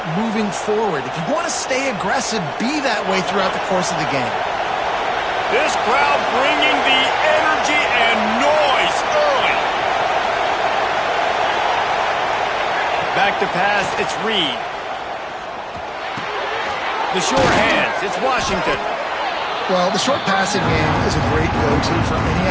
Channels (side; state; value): both; identical; correlation 1.00